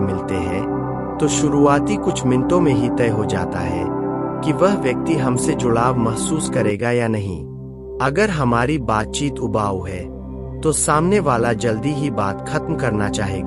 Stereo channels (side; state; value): both; identical; correlation 1.00